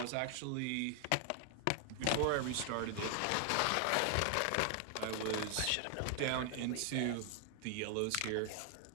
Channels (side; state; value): both; different; correlation 0.00